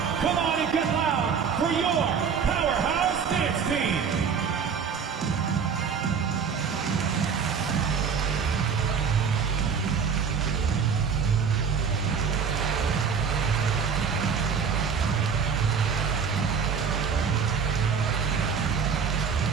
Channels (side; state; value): left; quieter; 6.3 dB